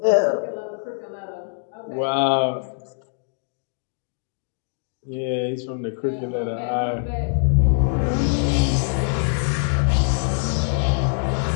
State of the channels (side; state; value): right; silent; digital silence